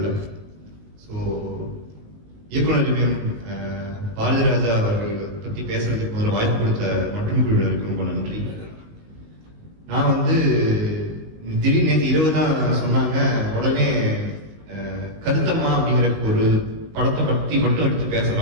ஸோ இயக்குனர் பாரதிராஜா அவர்கள் பற்றி பேசுறதுக்கு முதல்ல வாய்ப்பு கொடுத்த மற்றும் குழுவினருக்கு ரொம்ப நன்றி. நான் வந்து திடீர்னு நேற்று இரவு தான் சொன்னாங்க, உடனே கருத்தம்மா அப்படிங்கிற ஒரு படத்தை பற்றி மட்டும் எடுத்து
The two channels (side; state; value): left; late; 19 ms